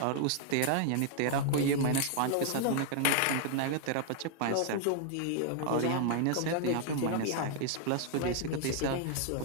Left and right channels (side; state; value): both; different; correlation 0.00